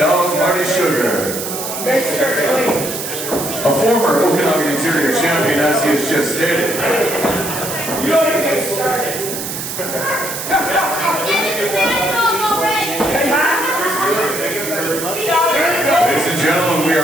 Marty Sugar. A former Okanagan-Interior Champion, as he has just stated. You don't even get started. Ladies and gentlemen, we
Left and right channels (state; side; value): noise; right; hiss, 6 dB below the sound